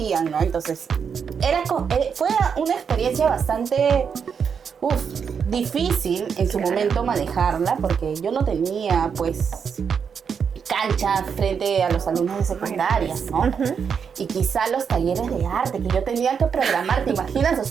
¿no? Entonces, fue una experiencia bastante difícil en su momento manejarla, porque yo no tenía pues cancha frente a los alumnos de secundarias, ¿no? Y quizá los talleres de arte que yo tenía que programar, ¿te imaginas? O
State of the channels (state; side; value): quieter; left; 6.7 dB